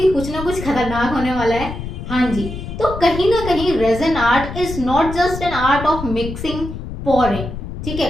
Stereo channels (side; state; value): left; noise; rumble, 8 dB below the sound